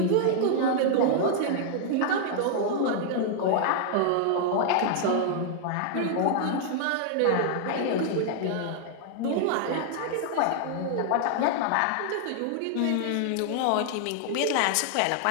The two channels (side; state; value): both; different; correlation 0.00